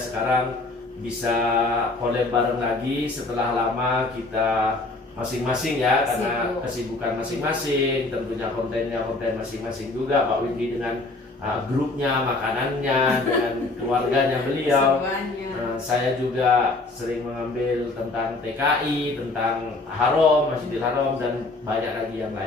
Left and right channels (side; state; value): right; quieter; 3.2 dB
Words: bisa collab bareng lagi setelah lama kita masing-masing ya, karena kesibukan masing-masing, tentunya kontennya konten masing-masing juga. Mbak Windy dengan grupnya, makanannya, dengan keluarganya beliau. Saya juga sering mengambil tentang TKI, tentang Haram, Masjidil Haram, dan banyak lagi yang